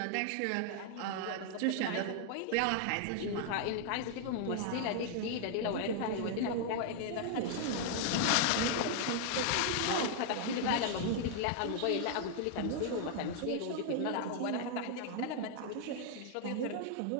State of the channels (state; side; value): different; both; correlation 0.00